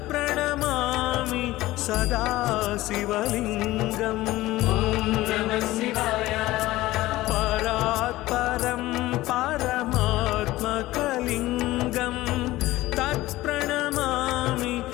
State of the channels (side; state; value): right; quieter; 17.4 dB